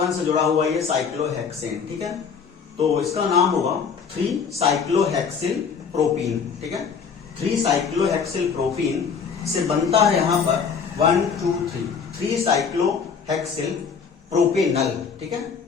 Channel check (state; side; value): quieter; right; 6.1 dB